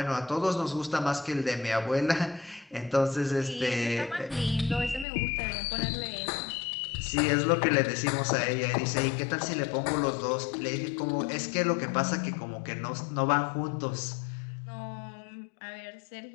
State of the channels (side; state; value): right; drops out; at 5.1 s